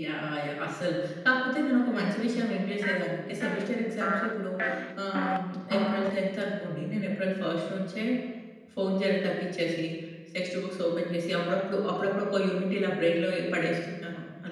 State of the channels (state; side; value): identical; both; correlation 1.00